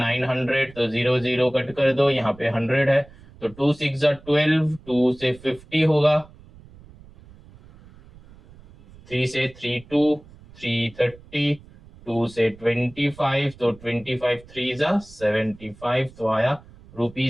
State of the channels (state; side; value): noise; right; rumble, 22 dB below the sound